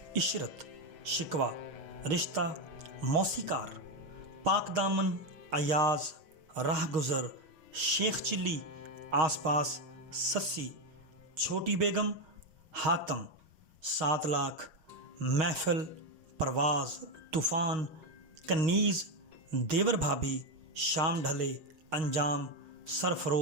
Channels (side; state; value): left; late; 6.4 ms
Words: عشرت، شکوہ، رشتہ، موسیقار، پاک دامن، ایاز، راہ گزر، شیخ چلی، آس پاس، سسی، چھوٹی بیگم، حاتم، 7 لاکھ، محفل، پرواز، طوفان، کنیز، دیور بھابھی، شام ڈھلے، انجام،